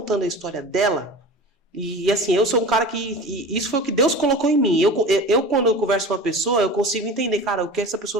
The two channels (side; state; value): both; normal; correlation 0.35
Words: a história dela. E assim, eu sou um cara que... Isso foi o que Deus colocou em mim. Eu quando eu converso com uma pessoa, eu consigo entender, cara, o que essa